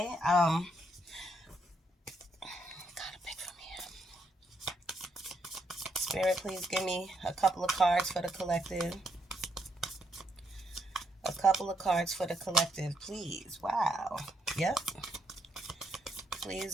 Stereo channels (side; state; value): both; normal; correlation 0.76